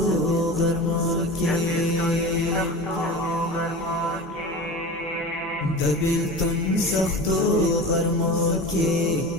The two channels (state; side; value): normal; both; correlation 0.31